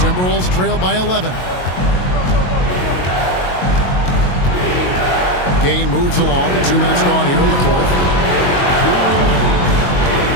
trail by 11. Game moves along. 2 minutes gone here in the fourth.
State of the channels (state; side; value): late; right; 22 ms